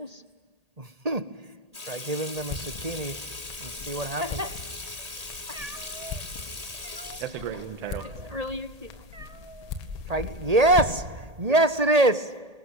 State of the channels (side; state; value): left; late; 1.8 ms